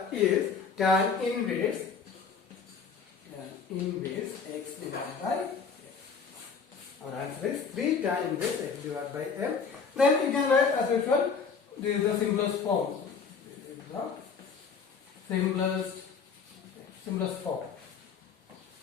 tan inverse x divided by m. Our answer is 3 tan inverse x divided by m. Then you can write as usual. This is the simplest form. the simplest form.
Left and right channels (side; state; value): right; quieter; 5.6 dB